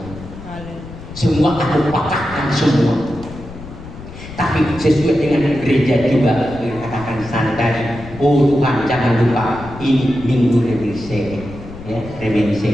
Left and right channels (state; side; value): noise; left; rumble, 14 dB below the sound